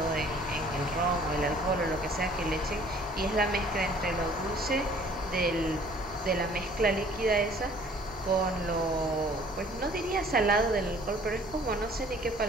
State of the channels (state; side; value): normal; both; correlation 0.55